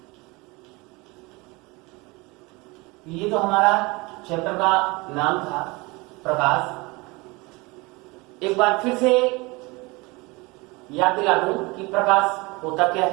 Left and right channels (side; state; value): left; quieter; 24.9 dB